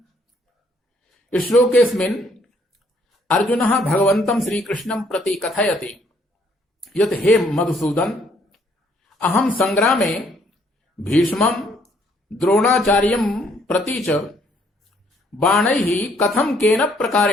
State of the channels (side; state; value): both; normal; correlation 0.66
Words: श्लोकेस्मिन् अर्जुनः भगवन्तं श्रीकृष्णं प्रति कथयति यत् हे मधुसूदन, अहं संग्रामे भीष्मं द्रोणाचार्यं प्रति च बाणैः कथं केन